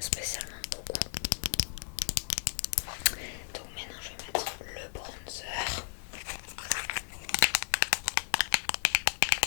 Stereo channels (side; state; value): right; silent; digital silence